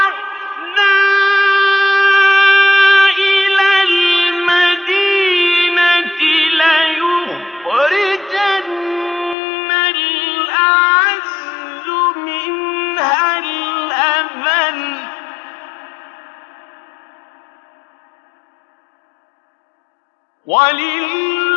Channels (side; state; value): right; drops out; at 9.3 s